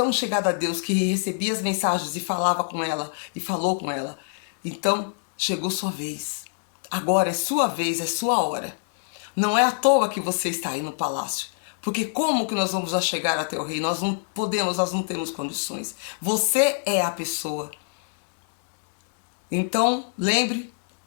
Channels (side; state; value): right; silent; digital silence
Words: chegado a Deus, que recebia as mensagens e falava com ela, e falou com ela. Então, chegou sua vez. Agora é sua vez, é sua hora. Não é à toa que você está aí no palácio. Porque como que nós vamos já chegar até o rei? Nós não podemos, nós não temos condições. Você é a pessoa. Então, lembre